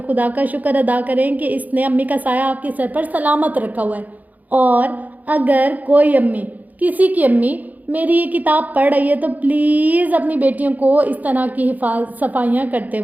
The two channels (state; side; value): late; left; 0.079 ms